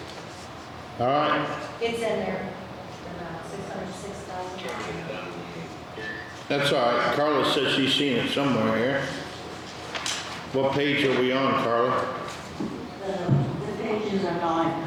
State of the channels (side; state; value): both; identical; correlation 1.00